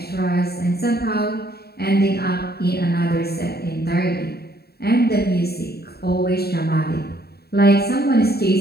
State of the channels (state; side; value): late; right; 0.46 ms